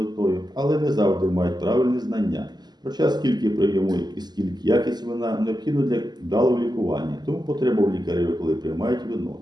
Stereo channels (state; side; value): late; left; 0.20 ms